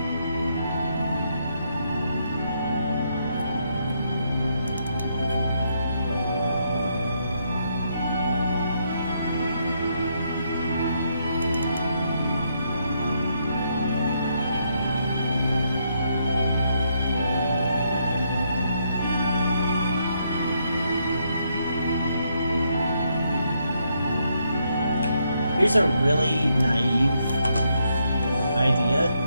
Here's a really naive idea.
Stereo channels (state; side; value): inverted; both; correlation -0.76